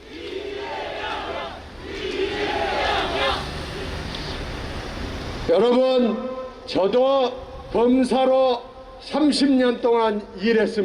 여러분, 저도 검사로 30년 동안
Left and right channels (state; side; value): identical; both; correlation 1.00